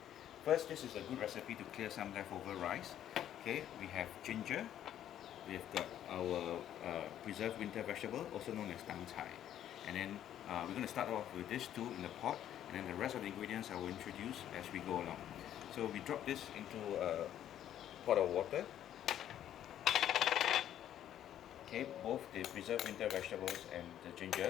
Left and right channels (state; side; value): quieter; right; 11.1 dB